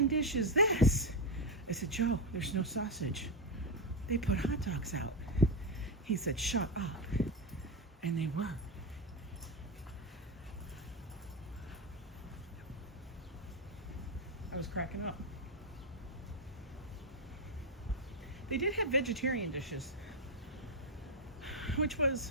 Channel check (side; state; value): both; normal; correlation 0.08